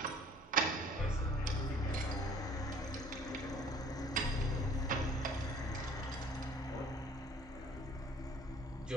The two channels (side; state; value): both; normal; correlation 0.53